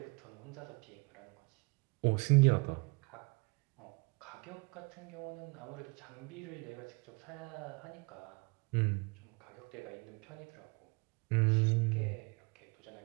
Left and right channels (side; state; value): left; quieter; 29.0 dB